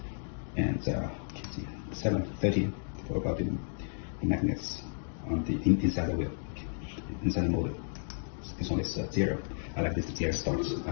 And 7, 13 for about the magnets on the inside the wheel, inside the motor. This one is 0. I like this 0 start. I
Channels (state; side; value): silent; right; digital silence